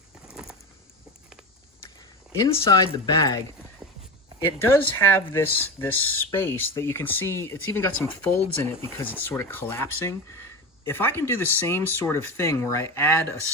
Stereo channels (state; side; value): normal; both; correlation 0.23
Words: inside the bag, it does have this space that you can see. It's even got some folds in it because it's sort of collapsing. If I can do the same sort of thing where I add a